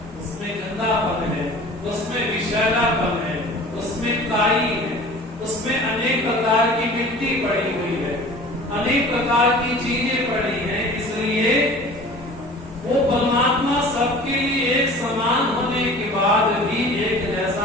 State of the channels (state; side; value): normal; both; correlation 0.43